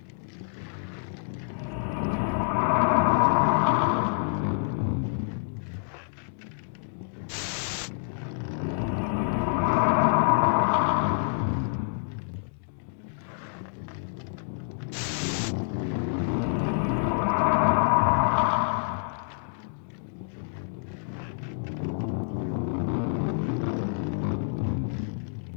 let her die. If I had helped her, Auntie wouldn't have killed herself. I killed my aunt. It was my fault, Auntie.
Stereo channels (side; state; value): right; silent; digital silence